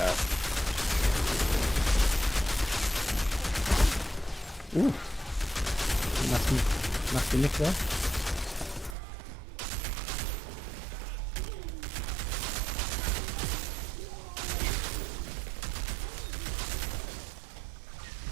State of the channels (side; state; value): left; drops out; at 9.0 s